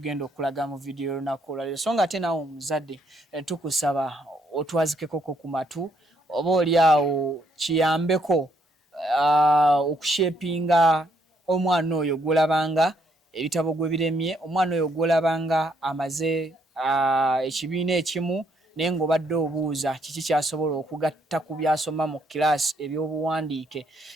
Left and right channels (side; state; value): both; normal; correlation 0.71